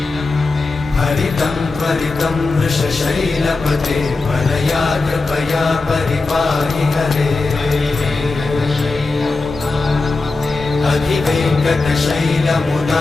हरितं त्वरितं वृषशैलपते परया कृपया परिपाहि हरे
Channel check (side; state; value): right; quieter; 3.6 dB